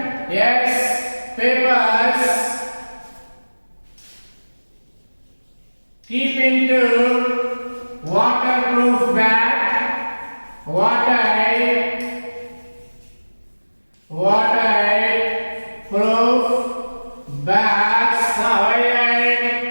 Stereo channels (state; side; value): inverted; both; correlation -1.00